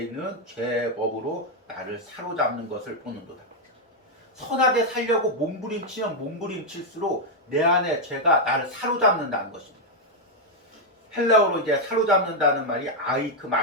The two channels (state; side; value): normal; both; correlation 0.00